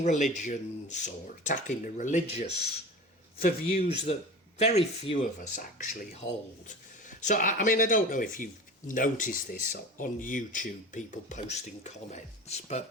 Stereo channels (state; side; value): normal; both; correlation 0.34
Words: religions or attacking the religious for views that very few of us actually hold. So, I mean, I don't know if you've noticed this on YouTube, people posting comments,